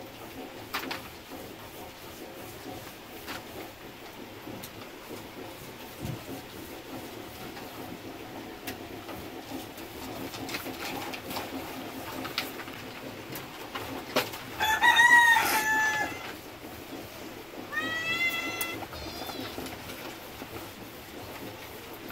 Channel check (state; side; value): noise; left; rumble, 26 dB below the sound